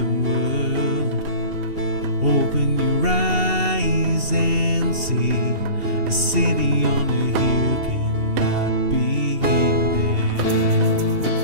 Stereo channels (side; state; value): left; late; 2.7 ms